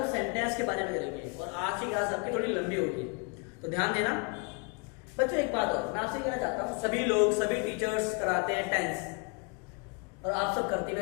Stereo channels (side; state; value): right; quieter; 33.8 dB